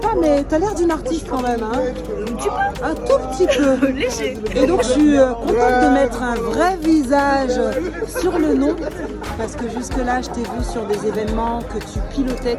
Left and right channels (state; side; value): identical; both; correlation 1.00